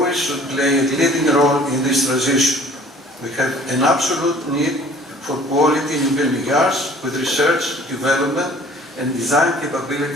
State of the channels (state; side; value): normal; both; correlation 0.51